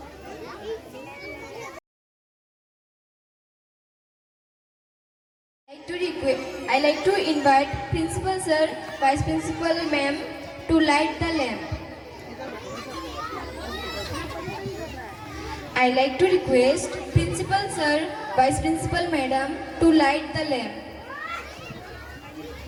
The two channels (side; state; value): both; identical; correlation 1.00